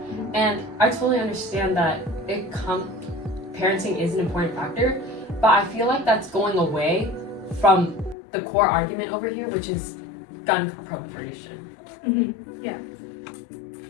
And I totally understand that parenting is an important factor, but I feel like that's going away from the core argument over here, which is gun proliferation. Yeah.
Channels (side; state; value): right; drops out; at 8.2 s